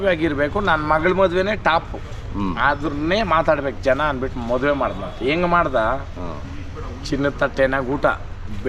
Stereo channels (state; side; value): identical; both; correlation 1.00